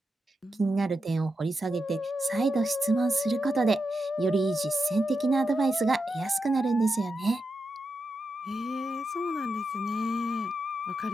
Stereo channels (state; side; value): normal; both; correlation 0.87